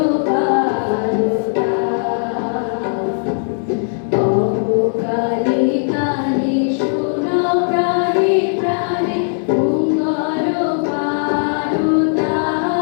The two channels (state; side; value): silent; right; 68 dB below the other